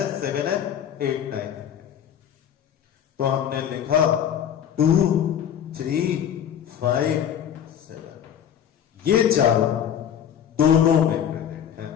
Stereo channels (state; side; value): quieter; right; 9.2 dB